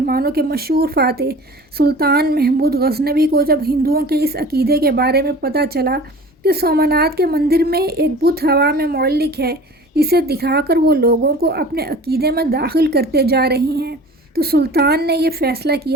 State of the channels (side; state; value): both; normal; correlation 0.41